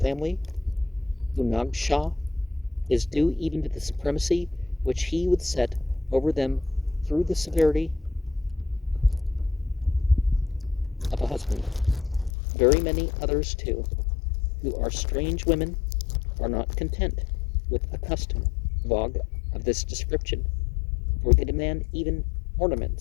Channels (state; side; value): drops out; right; at 12.3 s